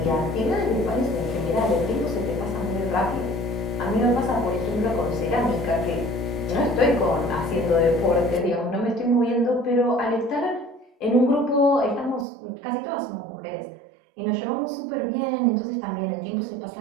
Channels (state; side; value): drops out; left; at 12.2 s